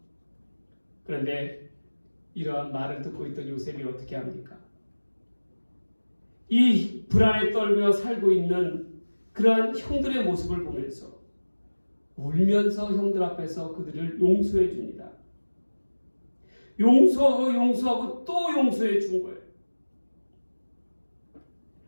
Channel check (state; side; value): inverted; both; correlation -1.00